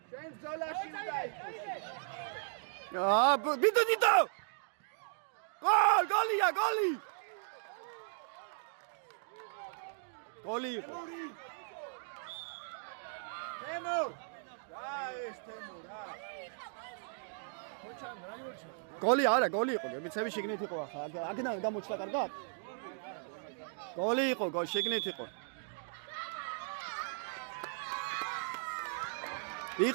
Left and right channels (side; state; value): left; silent; digital silence